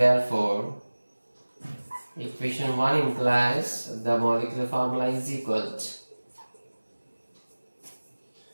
equation 1 implies the molecular formula is equal to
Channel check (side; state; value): both; inverted; correlation -1.00